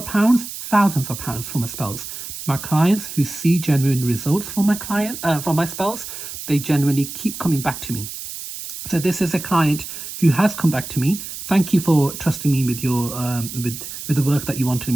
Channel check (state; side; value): noise; right; hiss, 9 dB below the sound